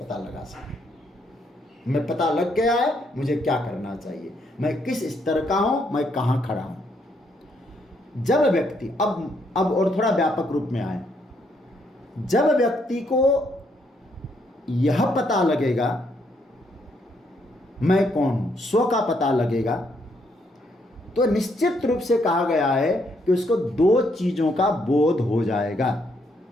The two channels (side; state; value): both; normal; correlation 0.73